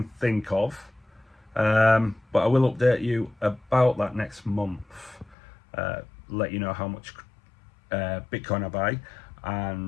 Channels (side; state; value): right; drops out; at 5.4 s